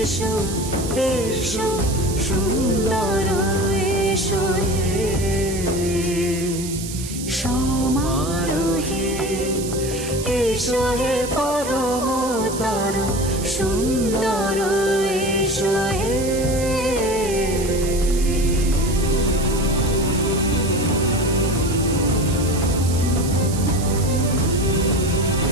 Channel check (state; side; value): noise; right; hiss, 10 dB below the sound